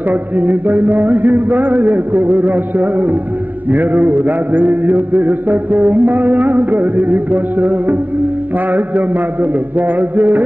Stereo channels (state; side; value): late; left; 0.088 ms